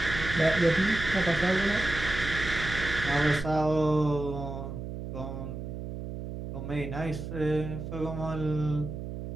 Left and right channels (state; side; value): noise; right; hum, 7 dB below the sound